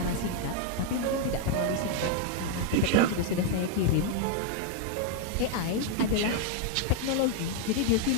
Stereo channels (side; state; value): both; different; correlation 0.00